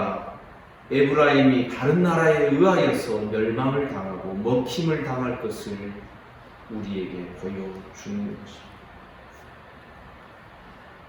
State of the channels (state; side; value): identical; both; correlation 1.00